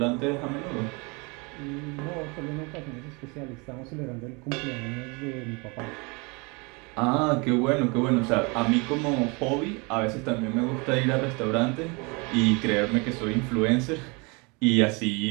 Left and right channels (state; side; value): quieter; left; 29.3 dB